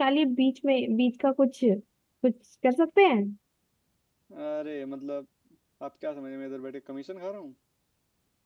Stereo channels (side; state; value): both; identical; correlation 1.00